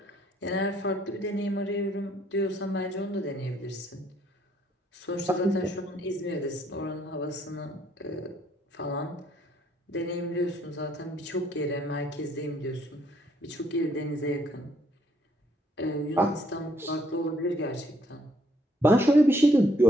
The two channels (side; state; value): both; normal; correlation 0.68